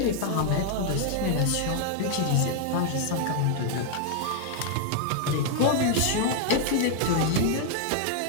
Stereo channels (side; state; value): both; different; correlation 0.00